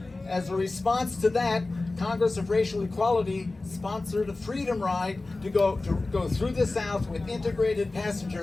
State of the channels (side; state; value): right; quieter; 3.2 dB